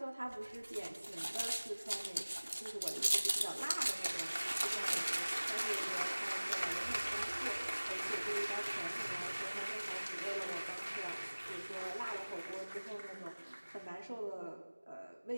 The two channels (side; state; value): both; inverted; correlation -1.00